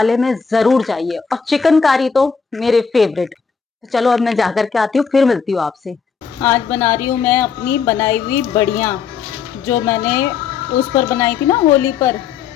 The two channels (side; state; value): right; quieter; 6.1 dB